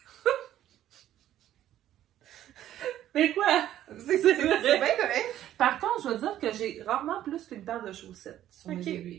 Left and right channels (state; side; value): quieter; left; 12.2 dB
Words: Mais quoi? C'est bien correct. Par contre, je veux dire que j'ai rarement plus qu'une paire de chaussettes sur mes